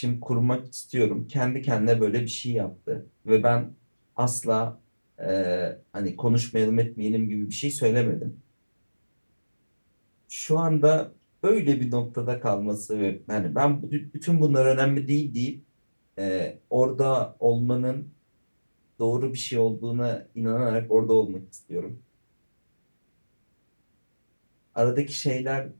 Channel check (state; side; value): inverted; both; correlation -1.00